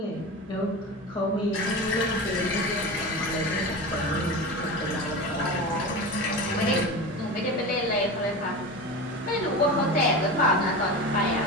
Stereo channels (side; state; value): both; normal; correlation 0.27